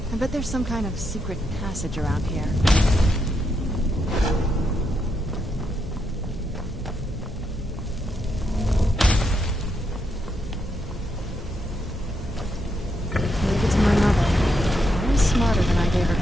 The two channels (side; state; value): both; normal; correlation 0.80